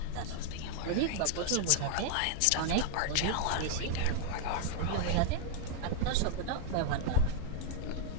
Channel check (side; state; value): both; different; correlation 0.00